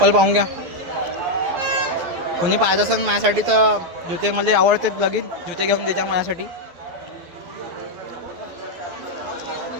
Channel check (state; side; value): late; left; 12 ms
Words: पाहून घ्या. कोणी पाहत असेल माझ्यासाठी तर जुते मला आवडते. लगीन जुते घेऊन द्यायच्या माझ्यासाठी.